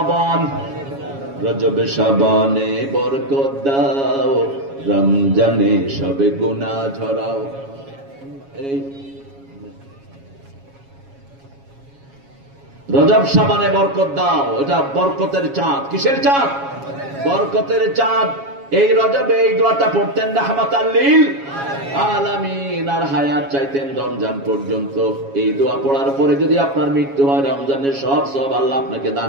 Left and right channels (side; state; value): left; late; 7.2 ms